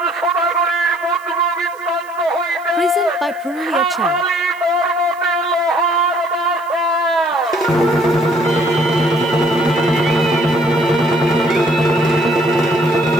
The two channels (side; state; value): right; noise; hiss, 27 dB below the sound